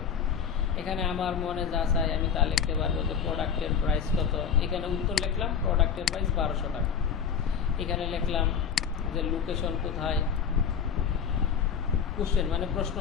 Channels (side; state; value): right; quieter; 7.0 dB